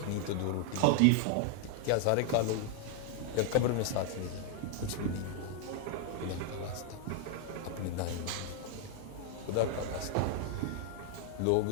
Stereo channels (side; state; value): both; different; correlation 0.00